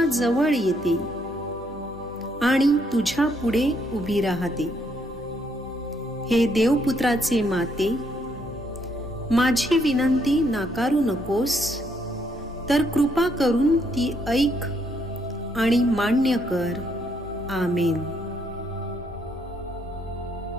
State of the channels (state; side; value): normal; both; correlation 0.73